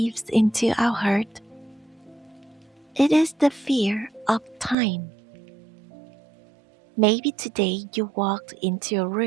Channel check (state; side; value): drops out; left; at 4.8 s